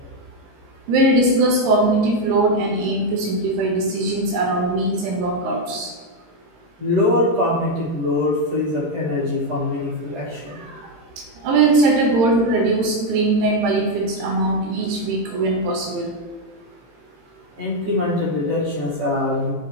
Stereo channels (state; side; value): late; left; 18 ms